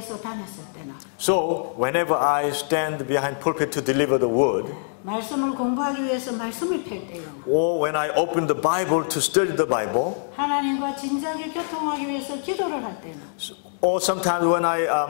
다녔을 때나 So, whenever I stand behind pulpit to deliver the word, 말씀을 공부하기 위해서 말씀을 펼 때에나 or when I open the Bible to study the Bible, 하나님과 진작에 교통하기 위해서 기도를 할 때나 or sometimes when I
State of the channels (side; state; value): right; silent; digital silence